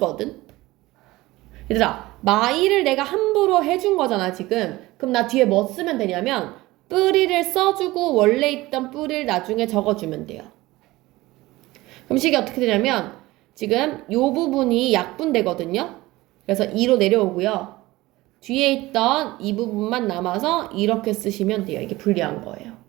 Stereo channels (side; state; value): left; quieter; 19.1 dB